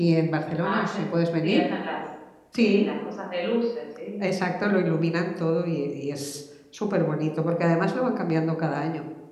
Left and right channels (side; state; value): both; identical; correlation 1.00